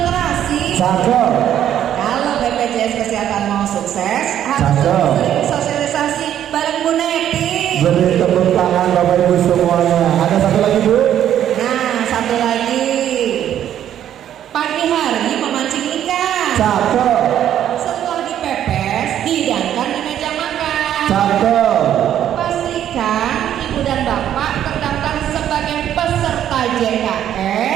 terasi. Cakep. Kalau BPJS Kesehatan mau sukses, harus Cakep. sering sosialisasi bareng Bu Neti. Beri tepuk tangan Bapak Ibu semuanya. Ada satu lagi Bu? Nah, satu lagi. Pagi hari memancing ikan. Cakep. Setelah dipepes, dihidangkan di meja makan. Cakep. Pastikan ibu dan bapak terdaftar sebagai peserta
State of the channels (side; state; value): left; quieter; 10.7 dB